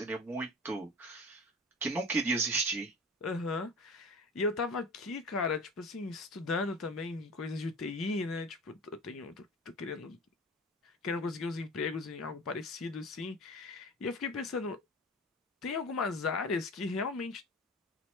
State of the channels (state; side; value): normal; both; correlation 0.35